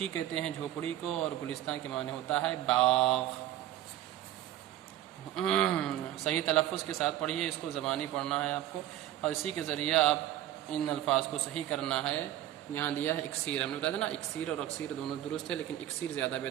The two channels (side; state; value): left; quieter; 13.2 dB